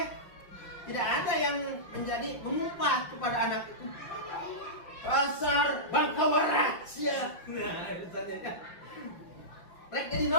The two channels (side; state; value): right; late; 5.9 ms